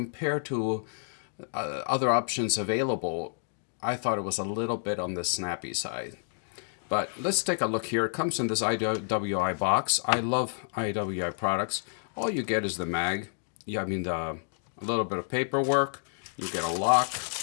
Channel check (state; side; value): silent; right; digital silence